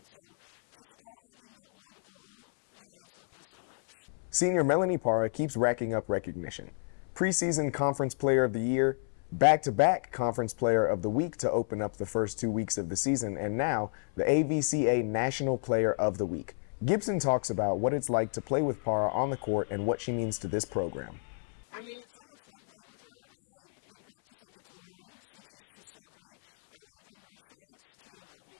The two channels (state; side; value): silent; right; 58 dB below the other